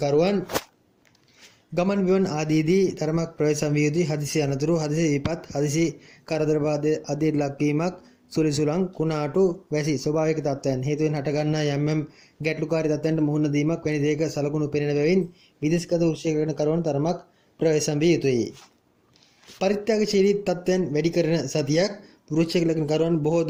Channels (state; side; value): identical; both; correlation 1.00